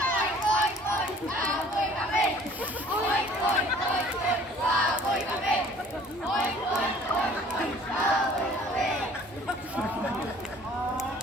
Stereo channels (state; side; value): normal; both; correlation 0.53